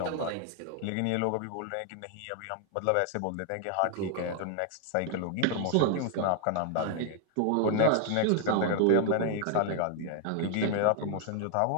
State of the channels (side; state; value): both; different; correlation 0.00